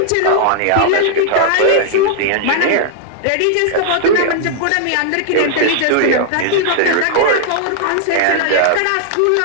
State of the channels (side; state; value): both; different; correlation -0.01